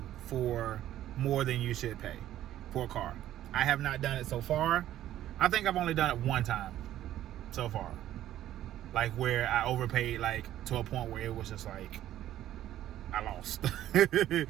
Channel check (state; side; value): quieter; left; 12.7 dB